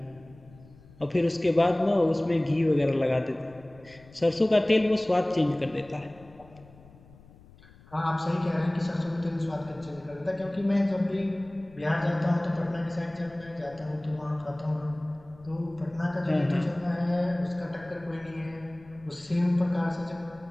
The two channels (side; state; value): left; noise; rumble, 24 dB below the sound